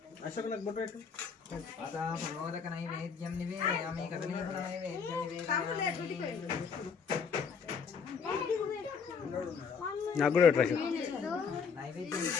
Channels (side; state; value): right; quieter; 6.0 dB